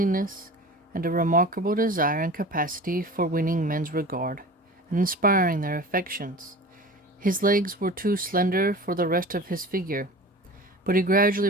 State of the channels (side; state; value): both; normal; correlation 0.37